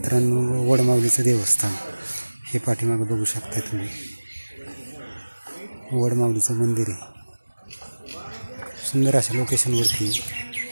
वडमावलीचं देवस्थान। हे पाठीमागं बघू शकता तुम्ही, वडमावलीचं मंदिर आहे। सुंदर अशा लोकेशनवरती,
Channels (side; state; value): both; inverted; correlation -1.00